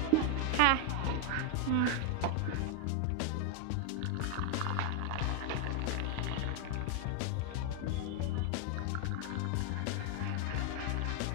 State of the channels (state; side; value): different; both; correlation 0.00